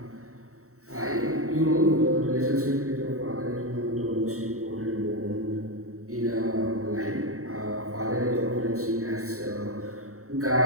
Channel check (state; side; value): late; left; 0.64 ms